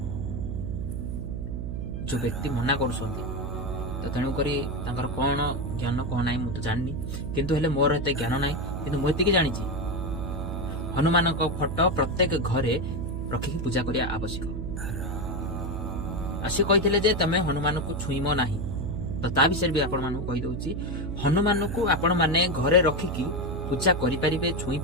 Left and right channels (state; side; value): noise; right; hum, 4 dB below the sound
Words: ଯୋଉ ବ୍ୟକ୍ତି ମନା କରୁଛନ୍ତି ତ ତେଣୁକରି ତାଙ୍କର କଣ ଜ୍ଞାନ କଣ ନାହିଁ ମୁଁ ତ ଜାଣିନି, କିନ୍ତୁ ହେଲେ ମୋର ଏତେ ଜ୍ଞାନ ନାହିଁ। କିନ୍ତୁ ମୁଁ ଏତିକି ଜାଣିଛି ହନୁମାନଙ୍କ ଫଟୋ ପ୍ରତ୍ୟେକ ଘରେ ରଖିକି ପୂଜା କରିବା ଆବଶ୍ୟକ। ଆଉ ସେ କହିଥିଲେ ଯେ ତମେ ହନୁମାନଙ୍କୁ ଛୁଇଁବ ନାହିଁ, ତ ତା ବିଷୟରେ ବି ଆପଣମାନଙ୍କୁ କହିଦଉଛି। ହନୁମାନଙ୍କୁ ଆପଣ ମାନେ ଘରେ ରଖିକି ପୂଜା କରିପାରିବେ, ଛୁଇଁ